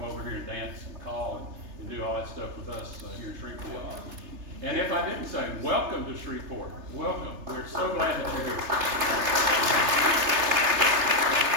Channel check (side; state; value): left; late; 3.3 ms